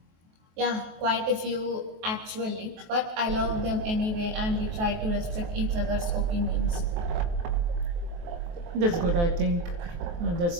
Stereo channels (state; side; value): late; left; 23 ms